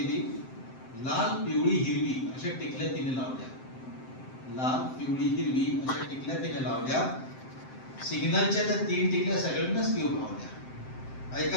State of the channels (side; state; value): right; late; 7.7 ms